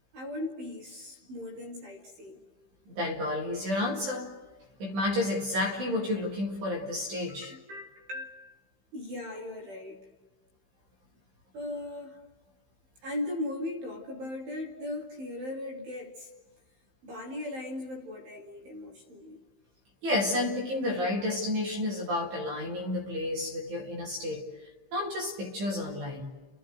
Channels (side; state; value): left; late; 15 ms